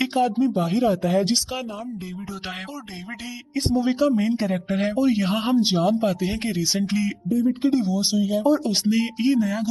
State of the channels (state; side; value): identical; both; correlation 1.00